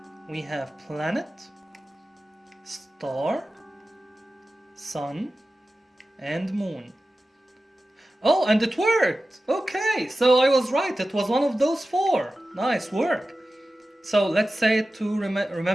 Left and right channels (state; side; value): normal; both; correlation 0.94